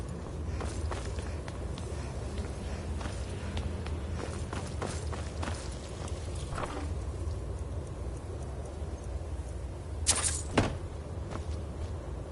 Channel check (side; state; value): both; identical; correlation 1.00